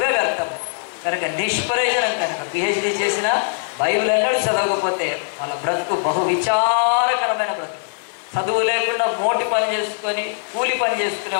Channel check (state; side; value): silent; right; digital silence